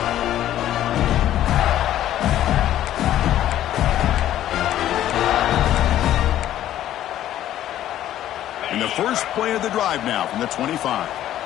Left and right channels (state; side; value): quieter; right; 12.4 dB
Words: And the first play of the drive now from the 25.